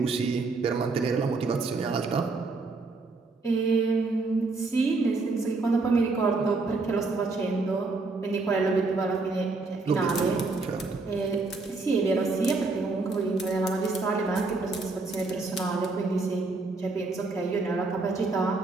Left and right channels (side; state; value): left; quieter; 3.7 dB